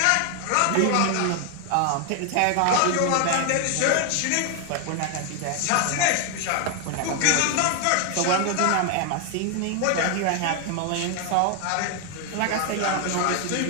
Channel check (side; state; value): both; different; correlation 0.01